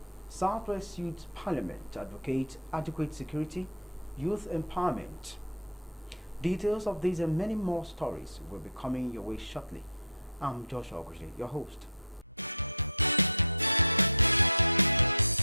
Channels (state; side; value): inverted; both; correlation -0.30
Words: Southwest Youth Parliament advocate adequate security, youth empowerment. Details of these and many more stories will be coming your way shortly. I'm Joshua Oguji, your host.